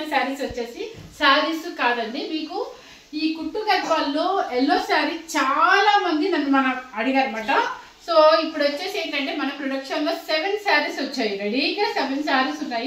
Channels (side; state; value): both; identical; correlation 1.00